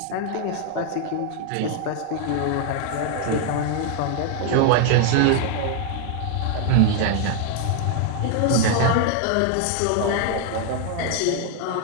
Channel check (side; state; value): both; different; correlation 0.00